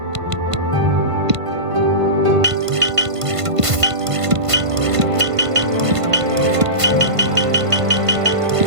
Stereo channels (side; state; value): left; late; 1.5 ms